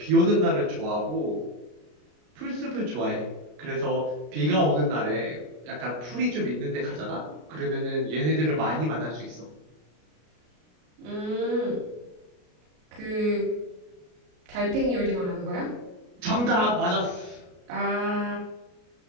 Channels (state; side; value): late; left; 33 ms